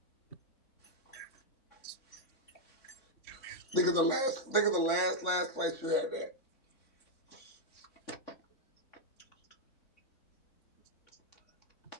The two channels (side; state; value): right; late; 3.6 ms